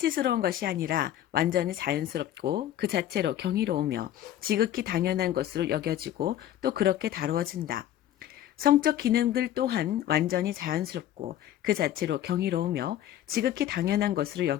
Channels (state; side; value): quieter; right; 12.0 dB